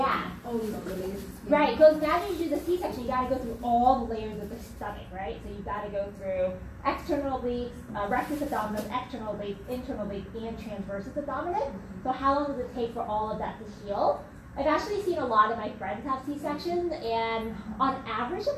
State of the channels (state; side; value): identical; both; correlation 1.00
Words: Oh, the layers. of skin. Right, because now you do the C-section, you got to go through all the layers of the stomach, right? So you got to go through external obliques, rectus abdominis, external obliques, internal obliques, and transversus abdominis. So how long does it take for all of that to heal? I've actually seen a lot of my friends have C-sections, and on average